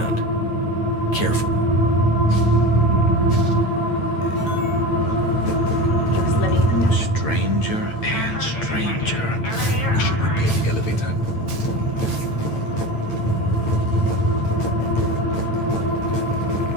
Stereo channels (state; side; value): late; right; 9.0 ms